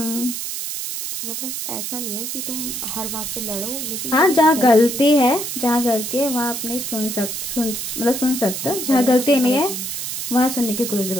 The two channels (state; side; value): noise; right; hiss, 5 dB below the sound